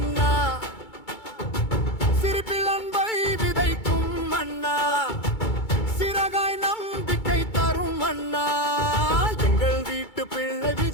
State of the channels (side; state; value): right; late; 2.3 ms